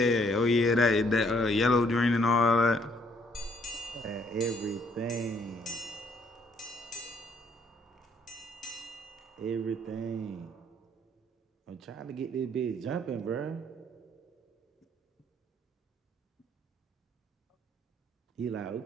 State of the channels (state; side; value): normal; both; correlation 0.66